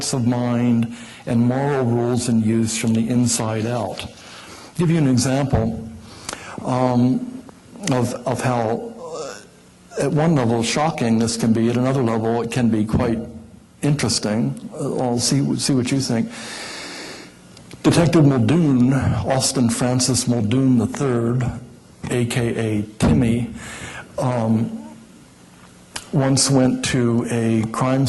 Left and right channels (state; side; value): identical; both; correlation 1.00